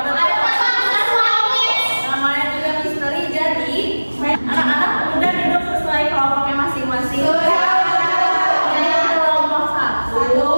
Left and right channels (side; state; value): both; inverted; correlation -1.00